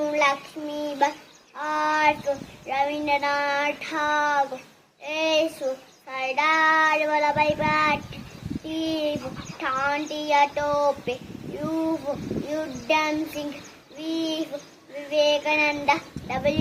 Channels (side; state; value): both; identical; correlation 1.00